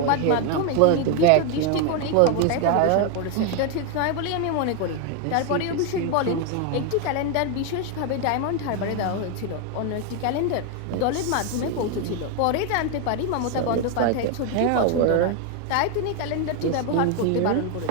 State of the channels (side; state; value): both; different; correlation 0.01